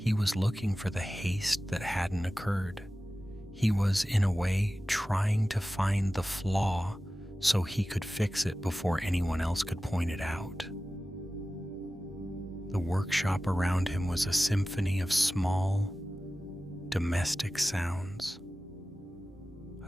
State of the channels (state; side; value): normal; both; correlation 0.96